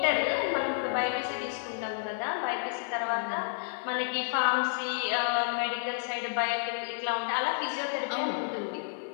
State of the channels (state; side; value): silent; right; 57 dB below the other